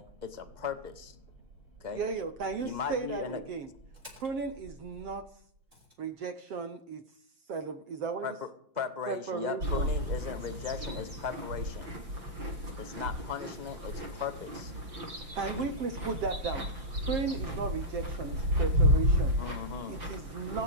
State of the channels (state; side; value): late; left; 5.9 ms